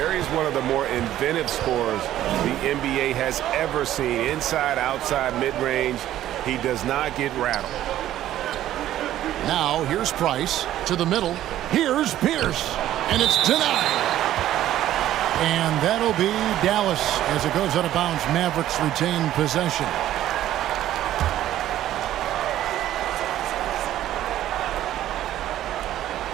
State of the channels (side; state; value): left; quieter; 12.9 dB